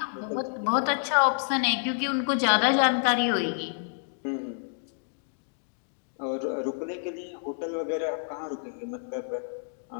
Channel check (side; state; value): right; silent; digital silence